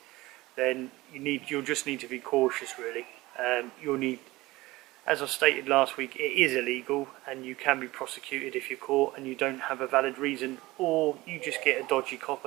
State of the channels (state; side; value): quieter; left; 19.6 dB